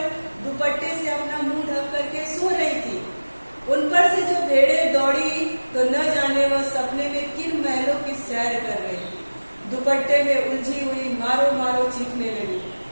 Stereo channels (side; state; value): both; inverted; correlation -1.00